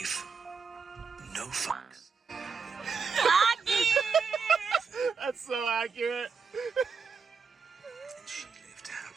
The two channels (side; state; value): left; quieter; 5.4 dB